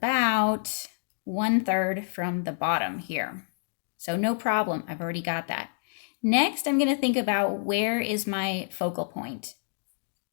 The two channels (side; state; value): right; silent; digital silence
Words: 1/3 from the bottom here. So no problem, I've already got that. Next, I'm going to think about where is my focal point,